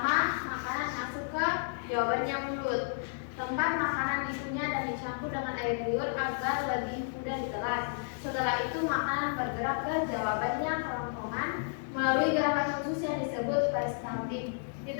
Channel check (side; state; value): right; silent; digital silence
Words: makanan masuk ke jawabannya mulut. Tempat makanan dikunyah dan dicampur dengan air liur agar lebih mudah ditelan. Setelah itu makanan bergerak ke jawabannya kerongkongan melalui gerakan khusus yang disebut peristaltik. Di